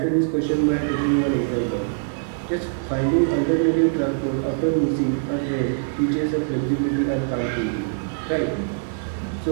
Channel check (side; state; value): left; silent; digital silence